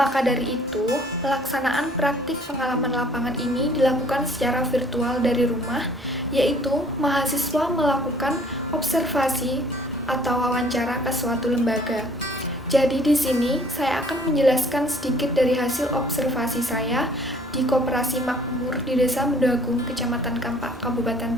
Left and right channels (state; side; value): normal; both; correlation 0.56